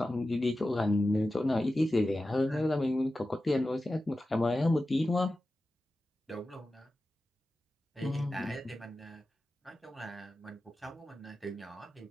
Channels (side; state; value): both; normal; correlation 0.93